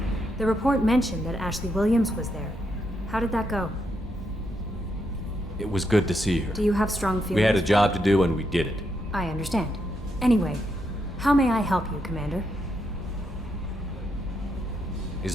The report mentioned that Ashley Williams was there. How did that go? It was good to see her. Do you have strong feelings? We had a job to do and we did it. I understand. Anyway, How may I help you, Commander? Is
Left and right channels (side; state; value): both; normal; correlation 0.80